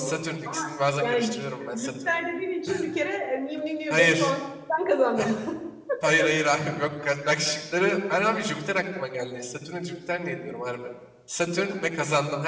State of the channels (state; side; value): identical; both; correlation 1.00